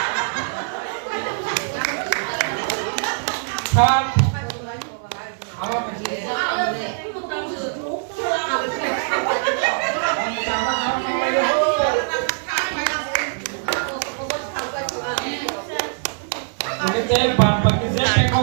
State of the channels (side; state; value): left; silent; 64 dB below the other